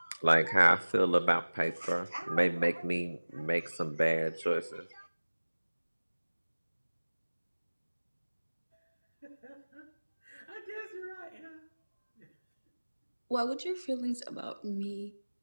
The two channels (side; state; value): both; inverted; correlation -1.00